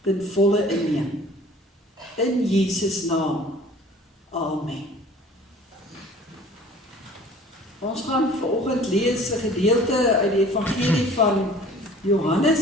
ten volle inneem. In Jesus naam. Amen. Ons gaan vanoggend lees 'n gedeelte uit die evangelie van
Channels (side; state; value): both; normal; correlation 0.49